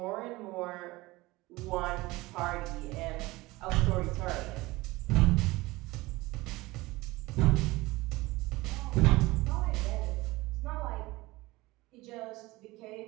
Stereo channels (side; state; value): left; quieter; 20.6 dB